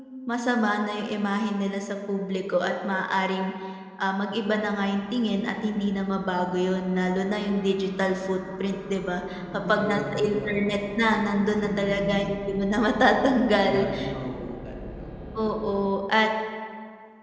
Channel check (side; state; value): both; identical; correlation 1.00